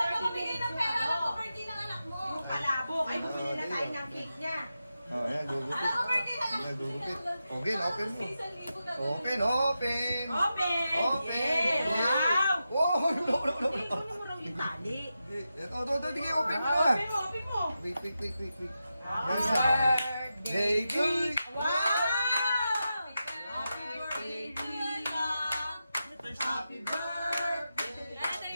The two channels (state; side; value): inverted; both; correlation -0.90